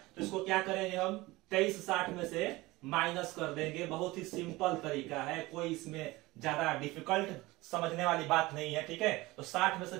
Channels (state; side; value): quieter; left; 20.4 dB